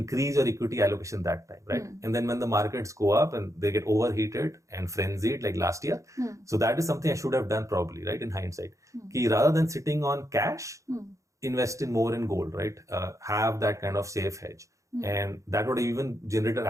your equity allocation that time, right? And then when the markets go up and they get overheated and frenzied like last year, so that is something I should have done probably, right? In hindsight, ki rather than sitting on cash, invest in more in gold, right? Have that kind of safe hedge. And that would even generate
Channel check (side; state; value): left; late; 0.15 ms